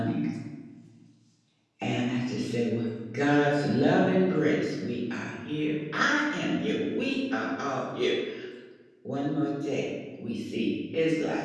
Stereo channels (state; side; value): identical; both; correlation 1.00